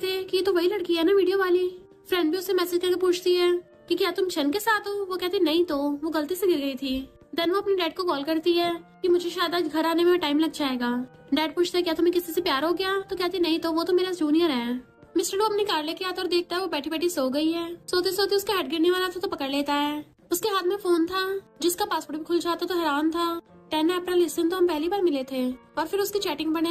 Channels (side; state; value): both; identical; correlation 1.00